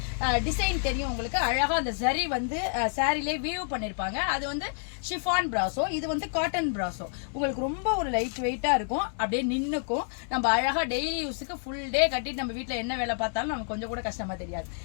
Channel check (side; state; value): right; silent; 59 dB below the other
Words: டிசைன் தெரியும். உங்களுக்கு அழகா அந்த சரி வந்து சாரிலே வியூ பண்ணிருப்பாங்க. அது வந்து ஷிஃபான் பிராசோ, இது வந்து காட்டன் பிராசோ. உங்களுக்கு ரொம்ப ஒரு லைட் வெயிட்டா இருக்கும், அப்படியே நின்னுக்கும். நம்ம அழகா டெய்லி யூஸுக்கு ஃபுல் டே கட்டிட்டு நம்ம வீட்டுல என்ன வேலை பார்த்தாலும் நமக்கு கொஞ்சம் கூட கஷ்டமா தெரியாது.